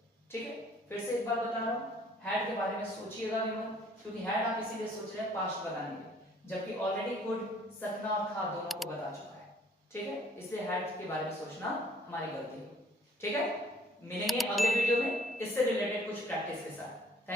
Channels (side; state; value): both; normal; correlation 0.58